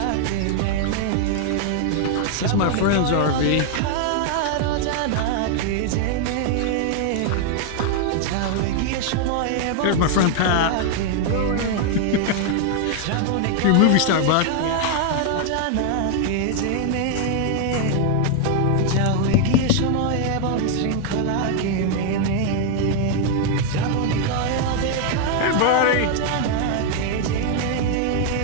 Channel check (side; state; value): both; different; correlation 0.00